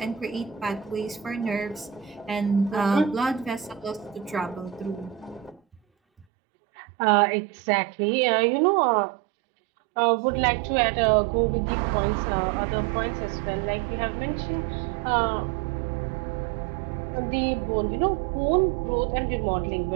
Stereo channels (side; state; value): left; drops out; at 6.2 s